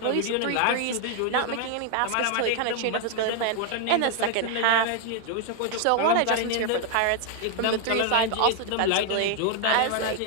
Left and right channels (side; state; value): both; different; correlation 0.00